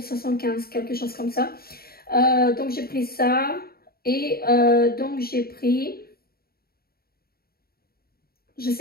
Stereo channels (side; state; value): right; late; 0.44 ms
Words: quelque chose comme ça. Donc j'ai pris ça et donc j'ai pris, je